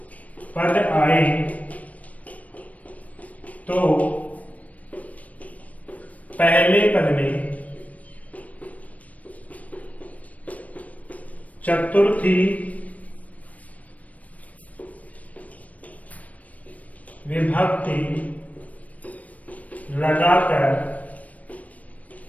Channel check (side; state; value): right; late; 0.070 ms